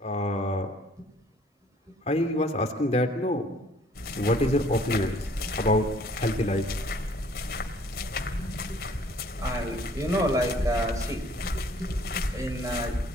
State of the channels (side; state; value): both; normal; correlation 0.58